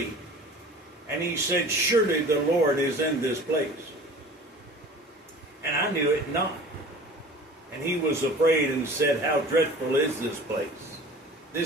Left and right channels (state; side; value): normal; both; correlation 0.43